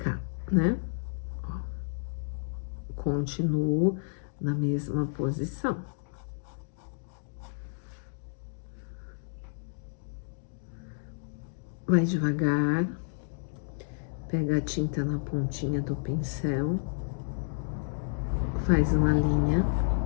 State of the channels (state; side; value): silent; right; digital silence